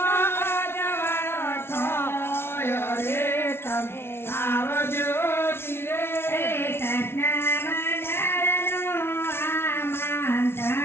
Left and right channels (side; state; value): right; late; 0.12 ms